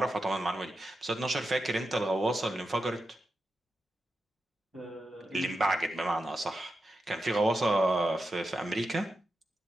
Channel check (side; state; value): both; normal; correlation 0.89